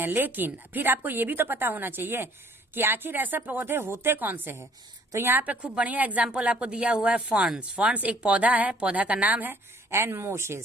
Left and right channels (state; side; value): normal; both; correlation 0.57